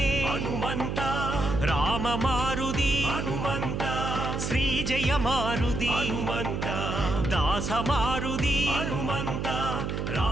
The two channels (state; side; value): noise; right; hum, 2 dB below the sound